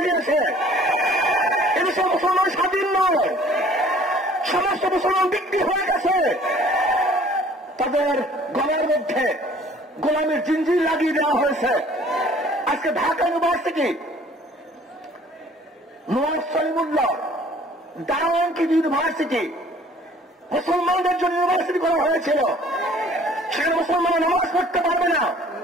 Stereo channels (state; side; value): normal; both; correlation 0.53